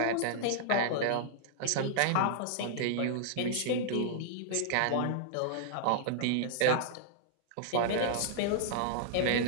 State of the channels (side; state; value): both; different; correlation -0.01